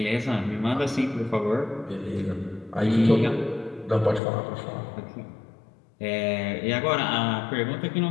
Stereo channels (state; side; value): drops out; right; at 4.2 s